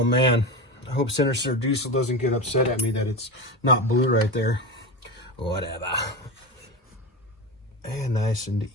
man. I hope Senator Diesel doesn't get upset at me that it's not blue right there. Whatever. And nice and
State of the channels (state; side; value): normal; both; correlation 0.21